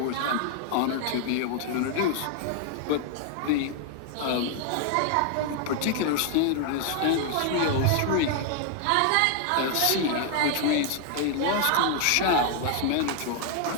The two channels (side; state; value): both; different; correlation 0.00